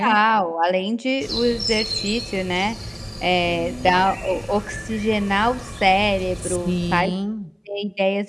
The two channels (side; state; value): both; identical; correlation 1.00